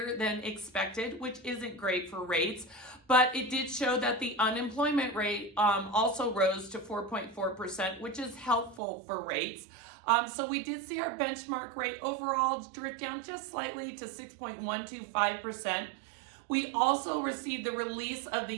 than expected, which isn't great for rates, but it did show that the unemployment rate also rose to 4.4%, which is helpful for rates. So we did see our benchmark rate overall drift down just slightly to 6.125%. We also received the release of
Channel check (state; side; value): drops out; left; at 8.8 s